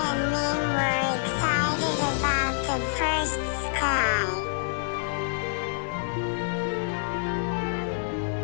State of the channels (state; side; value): silent; right; digital silence